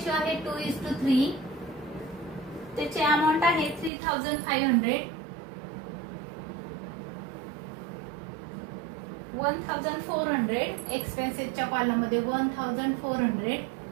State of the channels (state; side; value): drops out; left; at 3.9 s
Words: आहे 2:3. त्याची अमाऊंट आहे 3,500. 1,400 एक्सपेन्सेसच्या कॉलम मध्ये 1,400